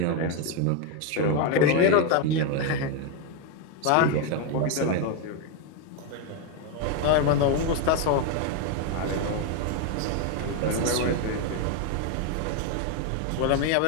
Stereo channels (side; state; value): both; different; correlation 0.02